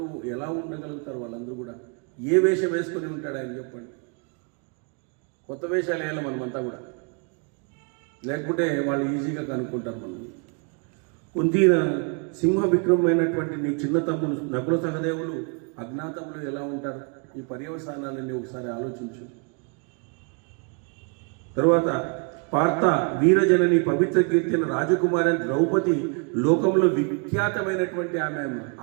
ఎలా ఉండగలుగుతారు వాళ్ళందరూ కూడా? ఏ వేషం వేసుకొని ఉంటాడు ఆయన చెప్పండి. కొత్త వేషాలు వేయాలి మనమంతా కూడా, లేకపోతే వాళ్ళు ఈజీగా కనుక్కుంటారు మనం. కుంతీన సింహ విక్రమైనటువంటి నీ చిన్న తమ్ముడు నకుల సహదేవులు అజ్ఞాతంలో ఎలా ఉంటారు? ఈ పర్యవసానాలన్నీ ఒకసారి ఆలోచించు. తర్వాత పార్థ, వీరజనని, పవిత్ర కీర్తిన రాజకుమారి ద్రౌపది లోకంలో విఖ్యాతమైనటువంటి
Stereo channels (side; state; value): left; quieter; 36.8 dB